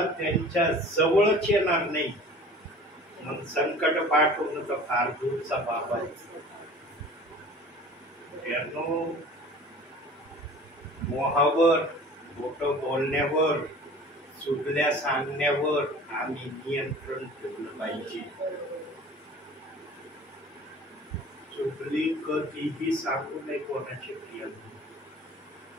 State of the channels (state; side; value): normal; both; correlation 0.44